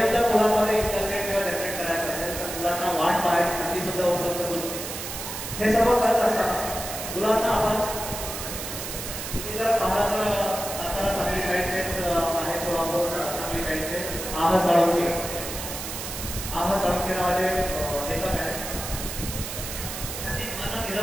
जर मुलांमध्ये इंटरनेट किंवा जनरेट करायचं असेल तर मुलांना वाट पाहायची संधी सुद्धा उपलब्ध करून देते. हे सर्व करत असताना मुलांना आपण तुम्ही जर पाहता तर सातारा सांगली साईडचेच आहे, सोलापूर सांगली साईडचे आह साळुंके नावाचे लेखक आहेत. त्यांनी मन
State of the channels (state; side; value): noise; right; hiss, 7 dB below the sound